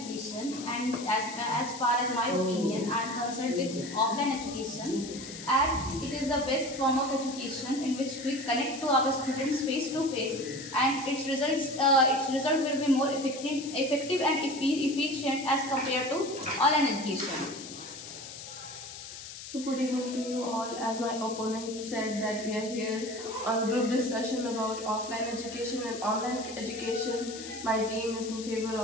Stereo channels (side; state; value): left; noise; hiss, 12 dB below the sound